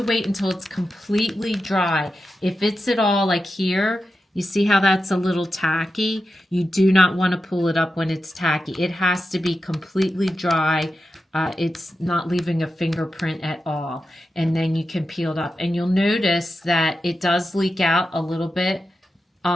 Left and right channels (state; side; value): normal; both; correlation 0.90